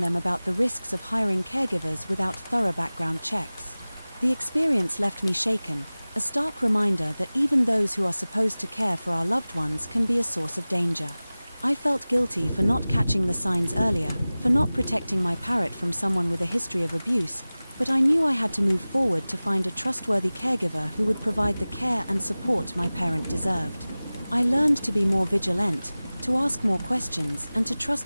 them about the risks of hiring caregivers without thorough background checks. The experience left me shaken, a stark reminder that even those who are supposed to care for our loved ones can be a source of danger. I felt guilty for not catching the signs earlier, for not protecting my parrot from someone with a history of abuse, but I knew I had to move forward to find a trustworthy caregiver who would provide the care and support my parent deserved. I learned to be more vigilant, to ask more questions, and to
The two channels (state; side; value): inverted; both; correlation -0.98